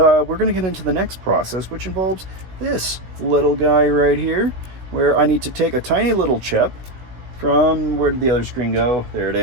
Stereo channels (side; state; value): left; late; 16 ms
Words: going to get into the next process, which involves this little guy right here, where I need to take a tiny little chip from, where did the other screen go? There it